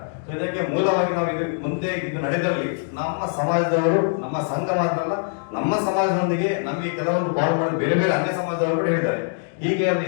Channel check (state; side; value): silent; right; digital silence